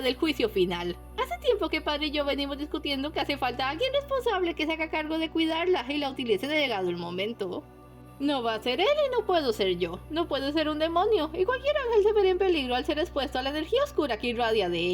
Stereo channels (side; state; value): both; identical; correlation 1.00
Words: juicio final. Hace tiempo que padre y yo venimos discutiendo que hace falta alguien responsable que se haga cargo de cuidarla y la utilice de llegado el momento. No va a ser él y no puedo ser yo. No puedo ser un demonio, y cualquier ángel se vería en peligro al ser expuesto a la energía oscura que irradia de